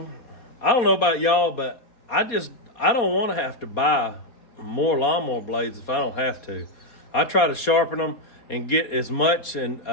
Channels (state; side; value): late; right; 4.2 ms